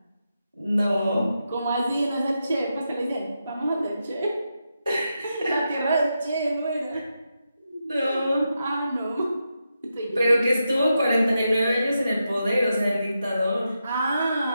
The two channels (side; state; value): both; inverted; correlation -0.86